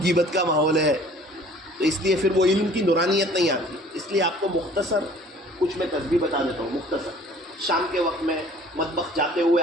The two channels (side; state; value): both; normal; correlation 0.51